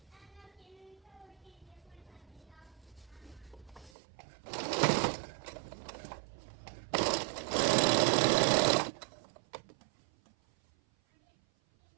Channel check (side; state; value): left; drops out; at 3.9 s